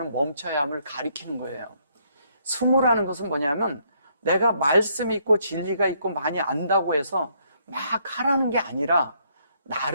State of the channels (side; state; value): both; inverted; correlation -0.70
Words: 멈춰야 함을 가리키는 거예요. 숨으라는 것은 뭐냐면 내가 말씀이 있고 진리가 있고 많이 안다고 해서 막 하라는 게 아니라